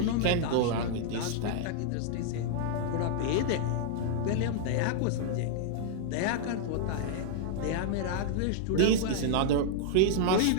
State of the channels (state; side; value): different; both; correlation -0.01